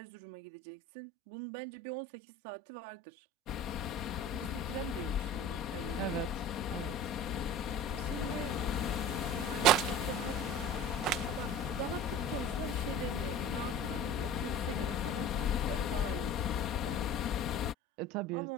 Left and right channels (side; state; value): both; normal; correlation 0.38